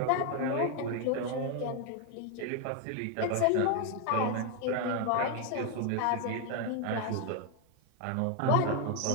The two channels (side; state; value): both; different; correlation 0.01